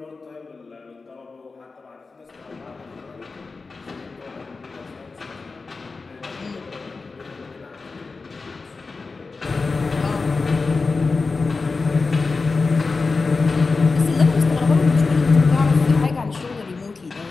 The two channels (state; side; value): quieter; right; 4.1 dB